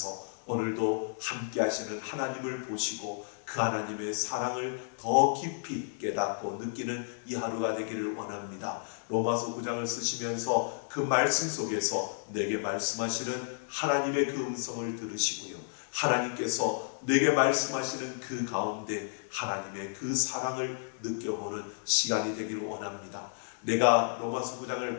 오늘도 함께 하시는 하나님을 보시고 그 하나님의 사랑을 더 깊이 깨닫고 느끼는 이 하루가 되기를 원합니다. 로마서 9장을 쓰시면서 그 말씀 속에서 내게 말씀하시는 하나님의 그 음성을 들으시고요, 하나님께서 내게 말씀하시는 그 가운데 하나님의 그 사랑을 느껴보는 시간이 되기를 원합니다. 내가 로마서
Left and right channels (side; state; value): right; silent; digital silence